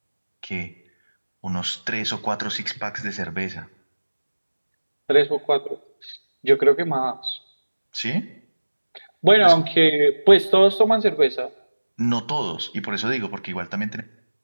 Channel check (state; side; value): inverted; both; correlation -1.00